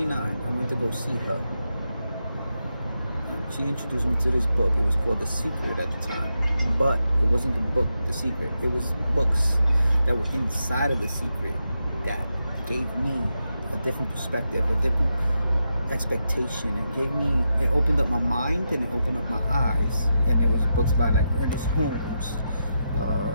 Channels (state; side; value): inverted; both; correlation -0.86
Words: I went to go see her. And she introduced me to this book. It was called The Secret at the time. But it wasn't the book, The Secret. It was books that were inside of The Secret that gave me a different perspective, a different expectation. It opened up my mind and it opened up my eyes. And there was books by like Ernest Holmes,